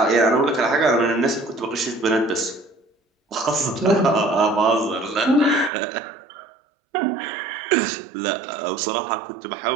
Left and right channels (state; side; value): drops out; left; at 5.7 s